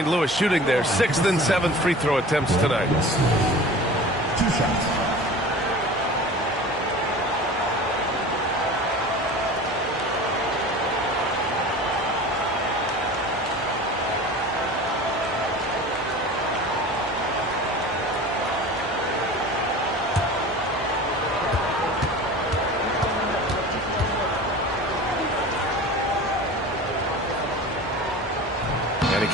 Louis shooting their 6th and 7th free throw attempts tonight. 2 shots.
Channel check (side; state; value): both; normal; correlation 0.37